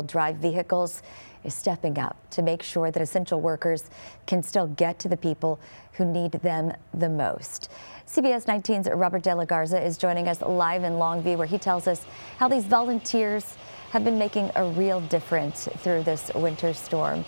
drive vehicles is stepping up to make sure that essential workers can still get to the people who need them the most. CBS 19's Robert De La Garza is joining us live in Longview, where he tells us how these volunteers have been making a real difference through this winter storm.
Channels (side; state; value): both; inverted; correlation -1.00